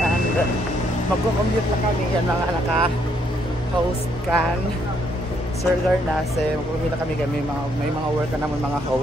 and magko-commute na kami. Yan mga naka-host kan Sir Garnase. Magko-commute na kami. May mga work na naman mga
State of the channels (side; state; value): both; normal; correlation 0.71